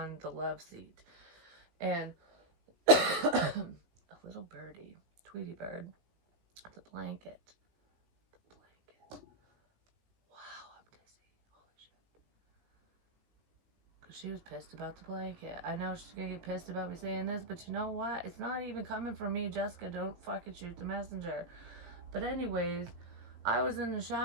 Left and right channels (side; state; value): left; late; 17 ms